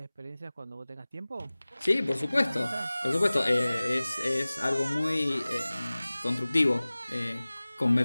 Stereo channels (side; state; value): both; inverted; correlation -0.99